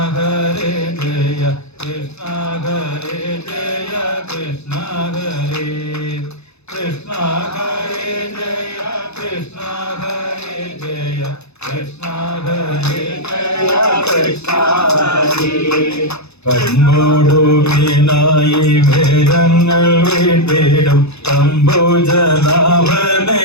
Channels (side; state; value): right; late; 0.80 ms